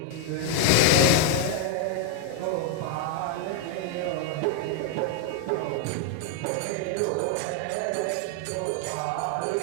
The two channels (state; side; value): different; both; correlation 0.00